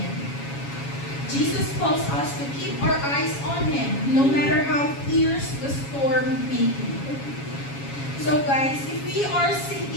Jesus calls us to keep our eyes on Him, no matter how fierce the storm may be. So guys, if we are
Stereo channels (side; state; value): right; late; 7.2 ms